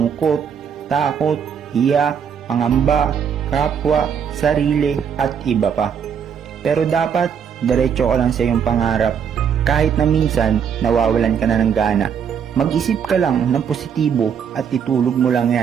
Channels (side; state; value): left; quieter; 7.5 dB